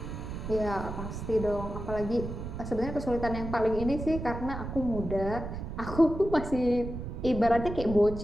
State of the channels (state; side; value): noise; right; rumble, 7 dB below the sound